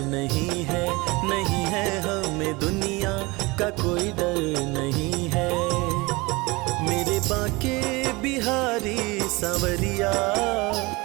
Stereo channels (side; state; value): left; quieter; 24.1 dB